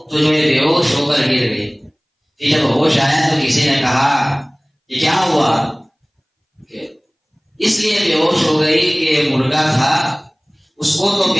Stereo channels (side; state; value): both; identical; correlation 1.00